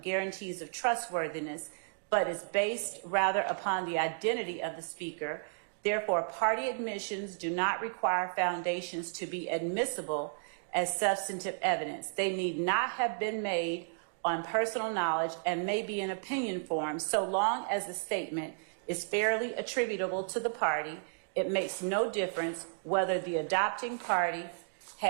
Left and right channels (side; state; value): left; silent; digital silence